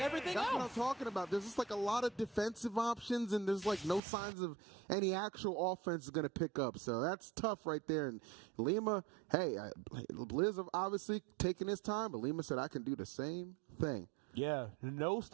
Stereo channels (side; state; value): left; drops out; at 4.0 s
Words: That's what I'm else. talking about. There's just like a lot of defensive options, and there's like no signs of any actual offense is going to pick up. So that's tough right there. And Lima, hey, Blizz obviously taking his time, but Lima said, I can do the same thing. Yeah, no